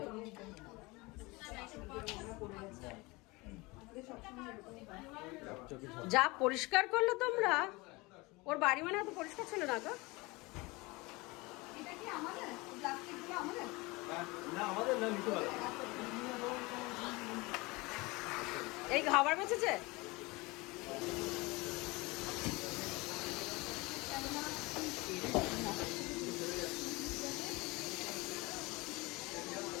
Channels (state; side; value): quieter; right; 24.0 dB